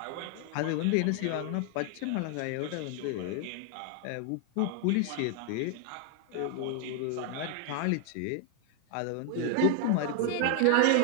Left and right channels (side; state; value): both; different; correlation 0.00